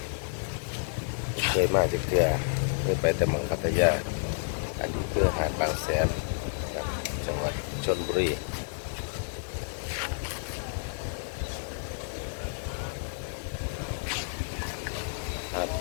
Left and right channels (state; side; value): silent; right; 58 dB below the other